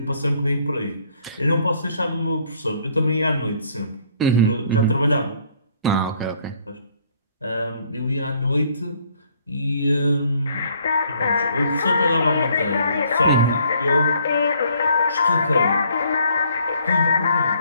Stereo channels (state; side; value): inverted; both; correlation -0.63